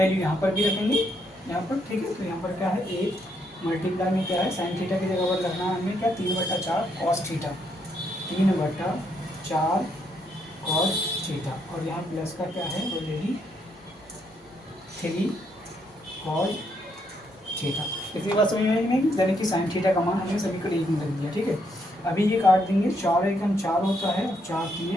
यहाँ पर भी रखेंगे यहाँ पर। ठीक है, तो यहाँ पर क्या है, 8 मल्टीप्लाई में क्या है, साइन थीटा की जगह पर रखना है हमें क्या, 3/4 कॉस थीटा, 3/4 कॉस थीटा, और यहाँ प्लस का क्या है ऑलरेडी 3 कॉस थीटा। इतनी बात समझ में आई नहीं, यानी कि साइन थीटा का मान हमने समीकरण 1 में रख दिया। ठीक है, अभी ये काट देंगे, 4 एकम 4 होता है, 4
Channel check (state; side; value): normal; both; correlation 0.75